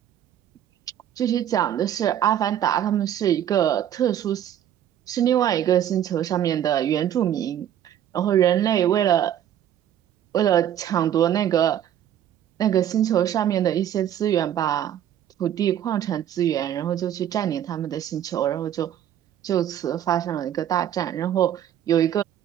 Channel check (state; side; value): quieter; left; 10.6 dB